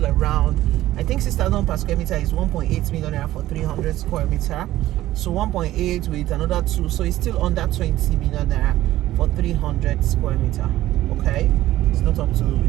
around, I think 6,000 per square meter is 1.8 million naira for 300 square meter. So 1.8 with another 2, so it's still under 20 million naira for 300 square meter. Okay, it's not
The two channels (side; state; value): left; quieter; 15.0 dB